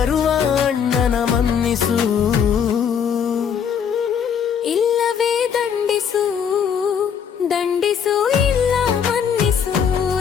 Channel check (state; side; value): quieter; right; 7.6 dB